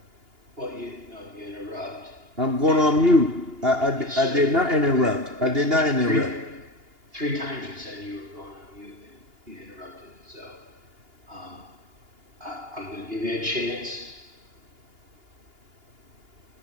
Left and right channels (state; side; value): late; left; 2.8 ms